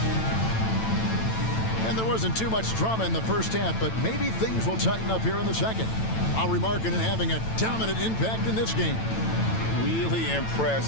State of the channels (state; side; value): late; right; 9.0 ms